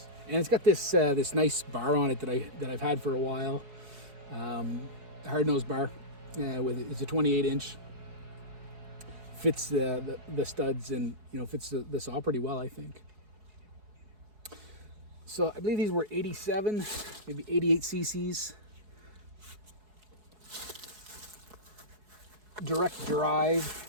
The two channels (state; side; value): late; left; 4.7 ms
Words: And it's got this this nice bar on it that I've had for a while. Hard nose bar, it's a 28-inch. Fits the studs and fits the saw pretty well, I think. So I believe these were 87, maybe 88 cc's. Direct drive,